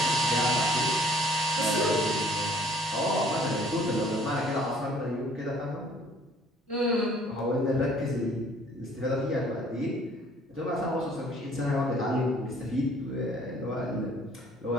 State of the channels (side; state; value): both; normal; correlation 0.58